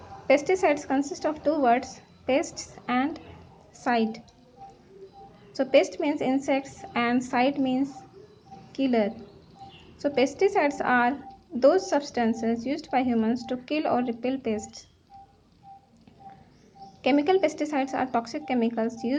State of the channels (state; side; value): identical; both; correlation 1.00